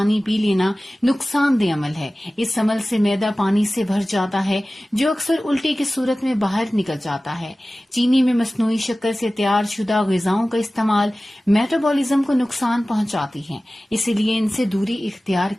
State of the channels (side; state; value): both; normal; correlation 0.97